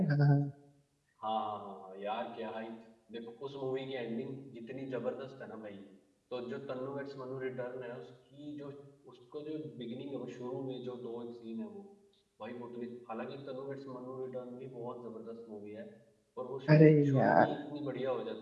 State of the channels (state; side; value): identical; both; correlation 1.00